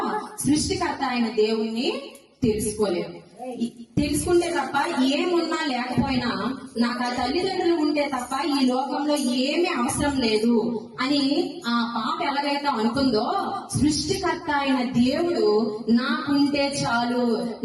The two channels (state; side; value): identical; both; correlation 1.00